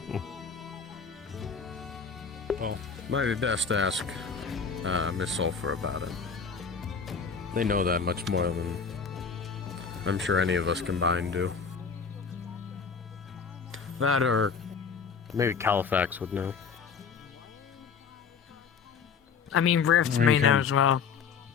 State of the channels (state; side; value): quieter; right; 5.8 dB